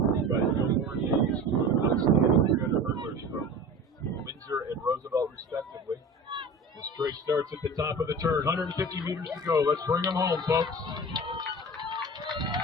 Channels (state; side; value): normal; both; correlation 0.35